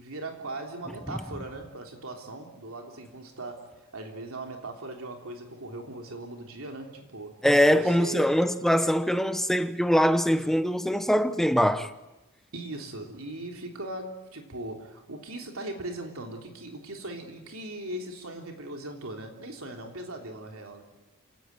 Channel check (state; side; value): normal; both; correlation 0.86